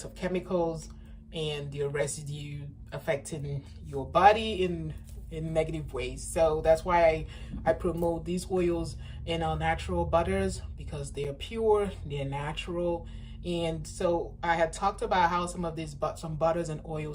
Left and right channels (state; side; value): identical; both; correlation 1.00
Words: of chemicals and the residue affecting your body in negative ways. So that's why I promote these oils in our natural butters, because they are pure, they're natural. And so I had talked about how some butters and